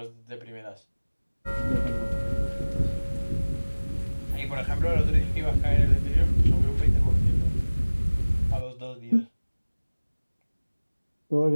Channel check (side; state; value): both; inverted; correlation -1.00